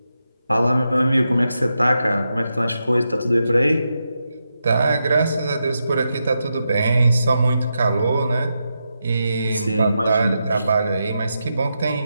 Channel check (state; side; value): inverted; both; correlation -0.87